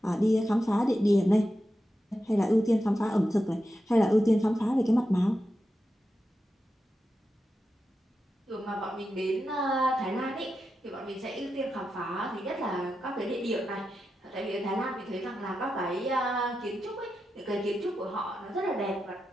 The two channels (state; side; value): normal; both; correlation 0.89